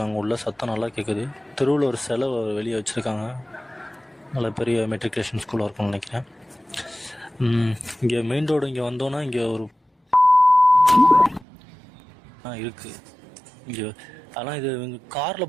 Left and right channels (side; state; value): left; drops out; at 11.5 s